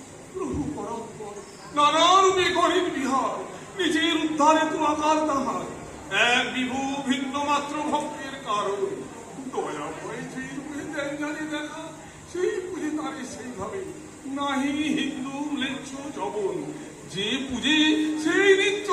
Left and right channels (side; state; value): both; identical; correlation 1.00